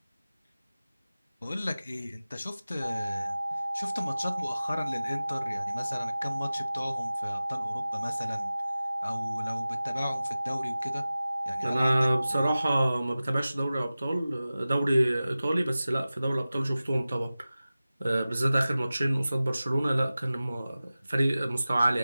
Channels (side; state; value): both; inverted; correlation -0.96